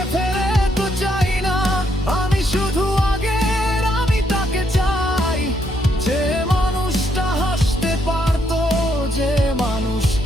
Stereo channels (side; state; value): both; normal; correlation 0.75